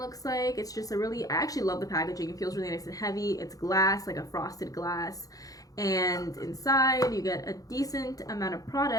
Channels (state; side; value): late; right; 0.17 ms